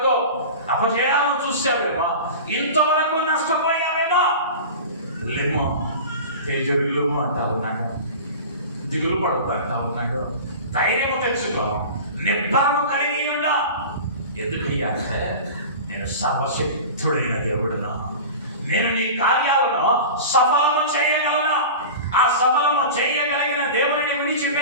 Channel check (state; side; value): inverted; both; correlation -0.33